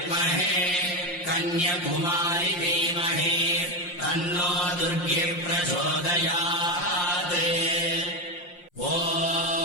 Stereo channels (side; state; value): right; late; 5.7 ms